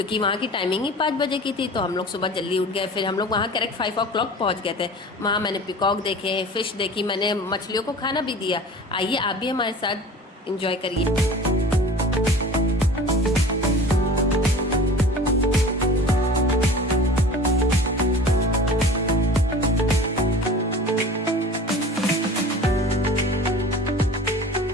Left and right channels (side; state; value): both; normal; correlation 0.40